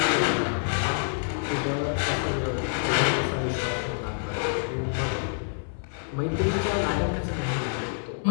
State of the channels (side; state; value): right; silent; 60 dB below the other